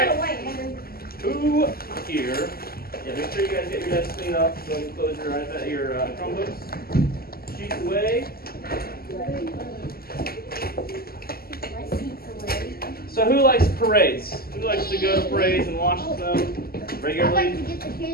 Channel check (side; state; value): right; late; 0.44 ms